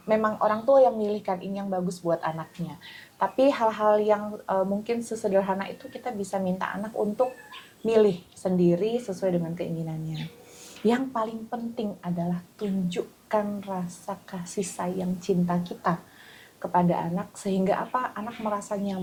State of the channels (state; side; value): identical; both; correlation 1.00